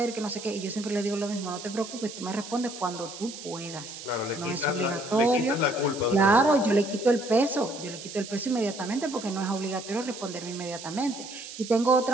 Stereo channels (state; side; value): noise; right; hiss, 12 dB below the sound